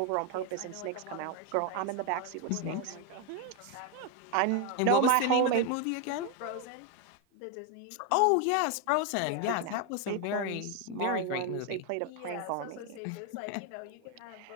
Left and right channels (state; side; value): different; both; correlation 0.01